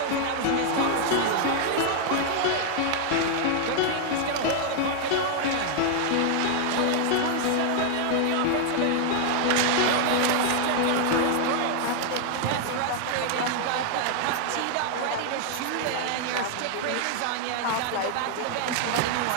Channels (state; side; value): different; both; correlation 0.00